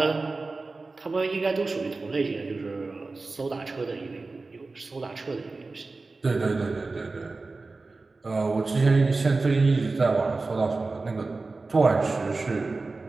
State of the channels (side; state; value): left; quieter; 3.6 dB